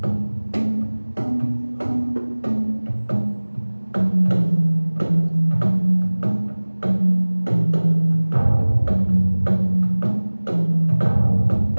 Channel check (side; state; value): both; inverted; correlation -1.00